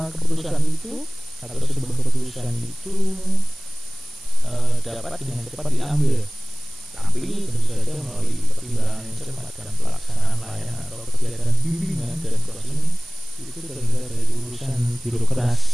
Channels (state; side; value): noise; right; hiss, 20 dB below the sound